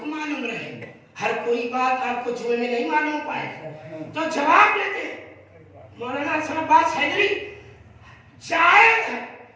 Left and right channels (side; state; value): both; identical; correlation 1.00